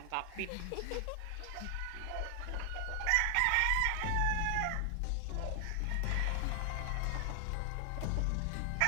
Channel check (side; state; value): both; different; correlation 0.00